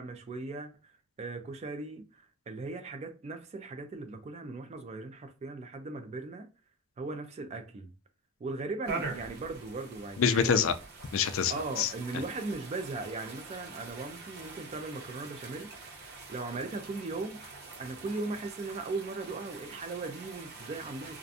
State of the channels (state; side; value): normal; both; correlation 0.23